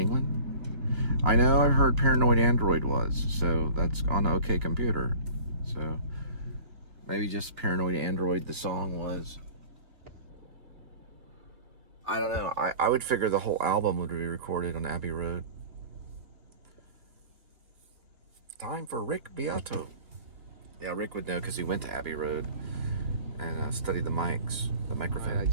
I know I've heard Paranoid Android was, so that's on OK Computer. So maybe just Paranoid Android the song was. I don't know. I would figure the whole album would be recorded on Abbey Road. Time for Rick Beato. Yeah, Rick would know because he went to Abbey Road and studied the microphone. I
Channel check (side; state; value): left; late; 2.5 ms